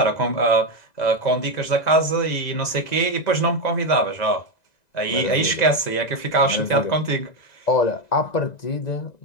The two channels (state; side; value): late; right; 2.0 ms